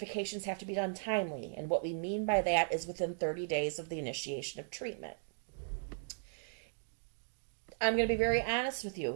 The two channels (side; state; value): left; silent; digital silence